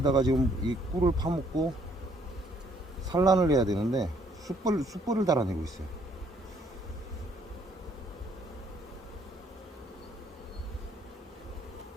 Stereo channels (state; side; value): normal; both; correlation 0.66